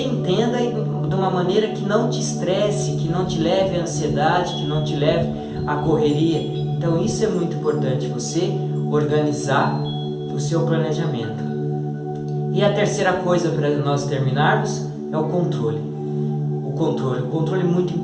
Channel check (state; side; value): identical; both; correlation 1.00